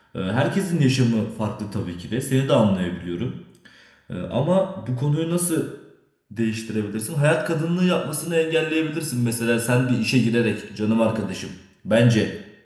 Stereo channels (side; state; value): both; identical; correlation 1.00